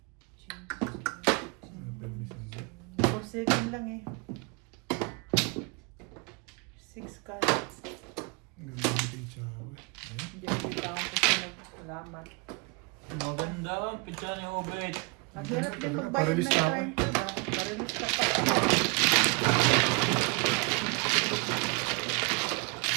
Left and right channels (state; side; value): quieter; left; 30.5 dB